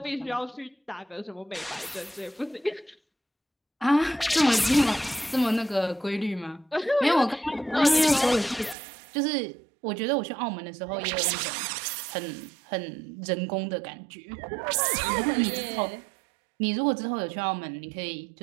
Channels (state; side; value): drops out; left; at 8.8 s